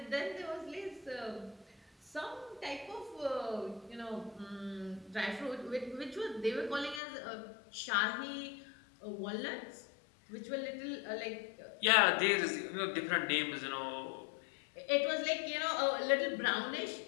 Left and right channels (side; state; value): right; drops out; at 7.0 s